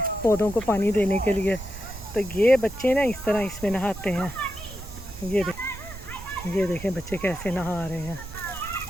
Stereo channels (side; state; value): right; noise; rumble, 13 dB below the sound